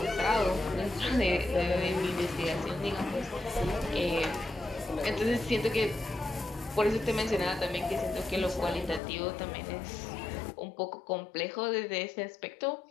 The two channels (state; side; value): drops out; right; at 9.0 s